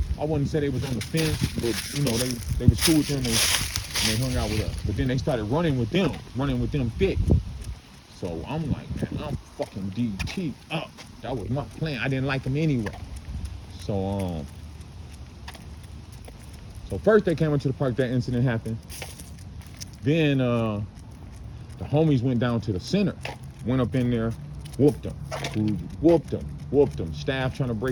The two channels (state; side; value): identical; both; correlation 1.00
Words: I wouldn't say they was on the fence, but you know, they was cool with them and they hung out with us. But then they started running with them thick. So I'm like, man, I'm fucking DT up. That was my plan. I didn't like them anyway. So first they came into the park, that incident happened. Then the homies went down to the center, went up in there, whooped them. Staff trying to